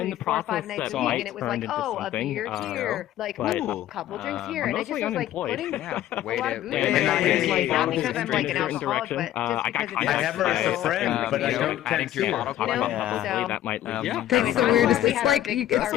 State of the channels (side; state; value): right; quieter; 12.8 dB